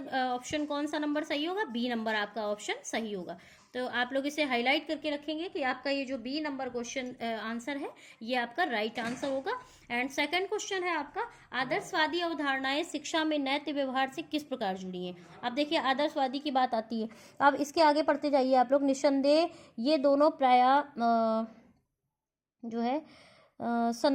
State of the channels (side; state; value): both; identical; correlation 1.00